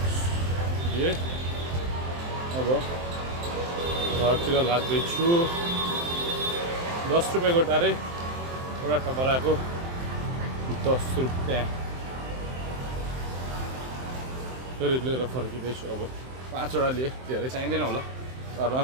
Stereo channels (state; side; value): late; left; 23 ms